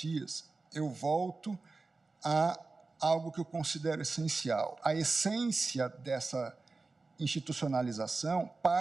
eu volto a algo que eu considero essencial. A essência dessa institucionalização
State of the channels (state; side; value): quieter; left; 3.7 dB